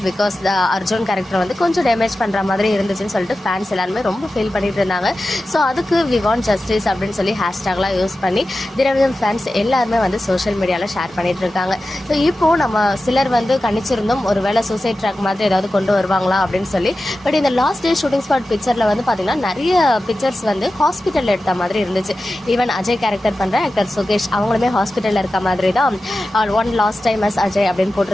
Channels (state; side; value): normal; both; correlation 0.94